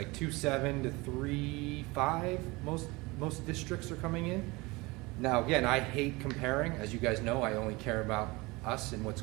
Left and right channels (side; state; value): left; quieter; 23.7 dB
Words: 2.7 to 3.5. Most districts are coming in. Now again, I hate comparing. As you guys know, I only care about us and what's